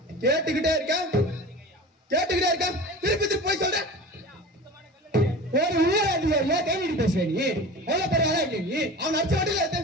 கேட்டுக்கிட்டே இருக்கேன் திருப்பி திருப்பி போய் சொல்றேன். ஒரு ஊர் அதிகாரியா கை நீட்டி பேசுற நீ எவ்வளவு பெரிய ஆளா இருக்க நீ? அவன் அடிச்ச வண்டியில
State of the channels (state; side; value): normal; both; correlation 0.35